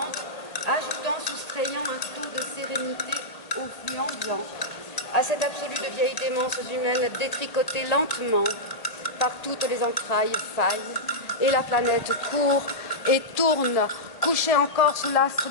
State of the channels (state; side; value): late; right; 1.8 ms